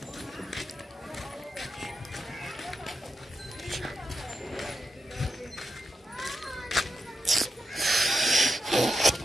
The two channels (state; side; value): normal; both; correlation 0.87